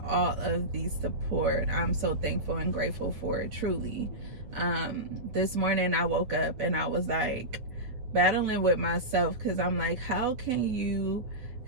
all of the support. I'm so thankful and grateful for it, truly. This morning I woke up and I was like battling with myself because I'm like, how can you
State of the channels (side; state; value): left; late; 8.3 ms